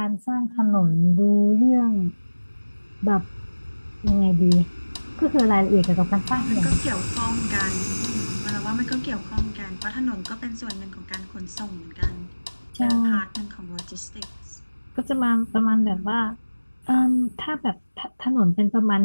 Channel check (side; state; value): both; inverted; correlation -1.00